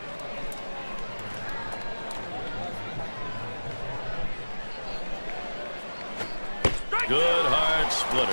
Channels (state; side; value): inverted; both; correlation -1.00